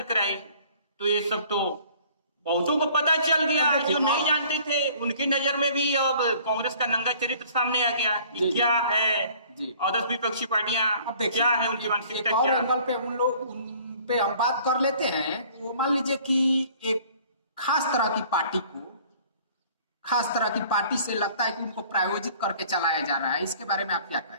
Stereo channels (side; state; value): both; inverted; correlation -0.54